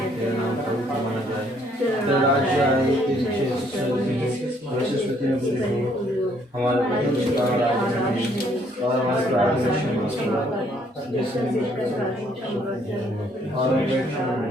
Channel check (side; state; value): both; normal; correlation 0.66